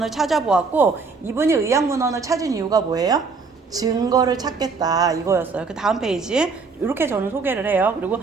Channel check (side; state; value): left; quieter; 4.6 dB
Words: 찾아보았고 이분이 의약문헌을 찾은 이유가 뭐예요? 증거를 찾겠다 이거였어요. 그 다음 페이지 이렇게 저는 소개를 해요. 그리고